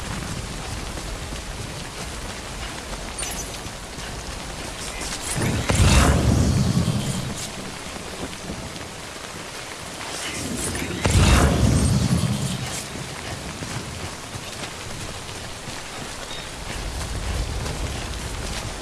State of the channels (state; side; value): identical; both; correlation 1.00